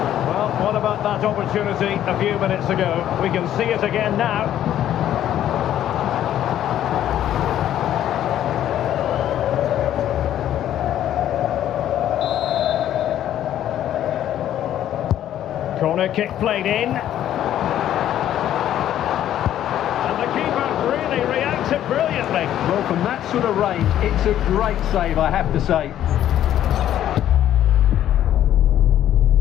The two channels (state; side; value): quieter; right; 11.5 dB